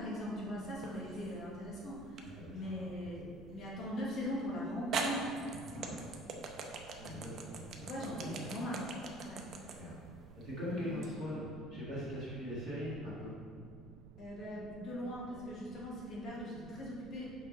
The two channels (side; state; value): right; noise; rumble, 14 dB below the sound